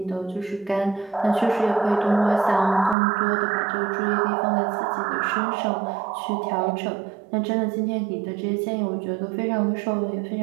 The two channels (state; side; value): drops out; left; at 3.0 s